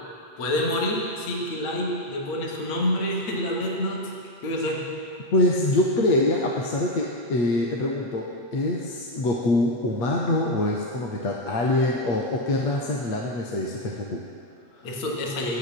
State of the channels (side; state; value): right; late; 8.6 ms